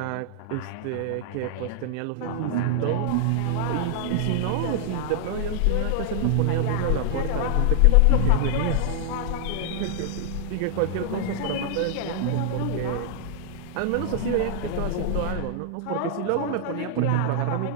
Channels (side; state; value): both; different; correlation -0.01